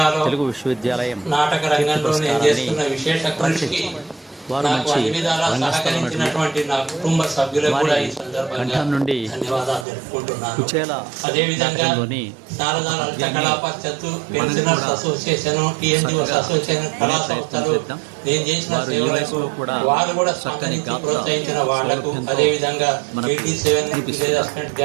తెలుగు విశ్వవిద్యాలయం నాటక రంగంలో నేను చేస్తున్న విశేష కృషికి వారు మంచి సహకరించినటువంటి నా కుటుంబ సభ్యులకు కూడా ఈ సందర్భంగా నుండి ధన్యవాదాలు తెలుపుకుంటున్నాను. కుచేల అదేవిధంగా శారదా లలిత కళా పరిషత్తు, పెన్షనర్స్ అసోసియేషన్, టీఎన్జిఓస్ అసోసియేషన్, కళా సంస్థలు నేను చేసిన సేవలకు వారు కూడా సహకరించి ప్రోత్సహించిన వాళ్లకు, అదేవిధంగా 87 విలేజ్ అసిస్టెంట్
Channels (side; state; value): left; drops out; at 9.9 s